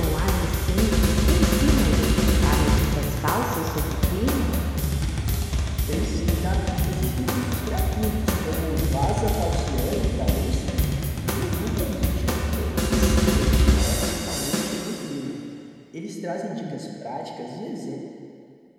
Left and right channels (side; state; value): both; identical; correlation 1.00